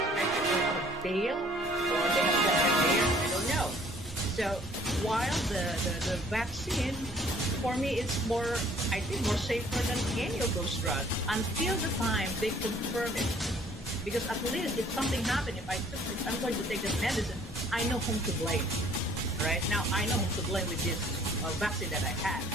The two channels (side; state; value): both; normal; correlation 0.57